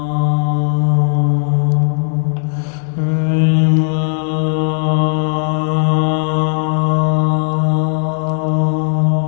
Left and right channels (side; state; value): right; silent; 61 dB below the other